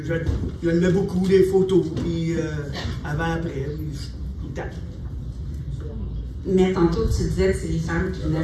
je le mets beaucoup, des photos, puis avant-après, puis tout le temps. Mais tantôt, tu disais que c'est les femmes qui venaient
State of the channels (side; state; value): both; identical; correlation 1.00